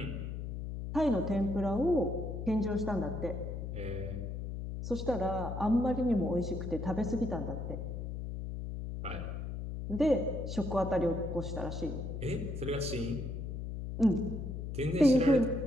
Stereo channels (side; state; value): left; noise; hum, 5 dB below the sound